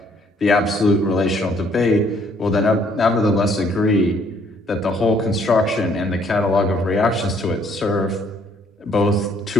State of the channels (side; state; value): both; normal; correlation 0.65